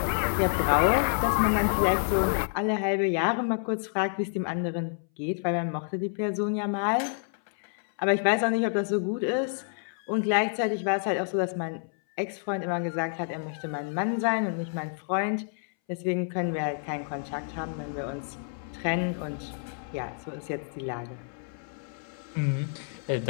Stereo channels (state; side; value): silent; right; 59 dB below the other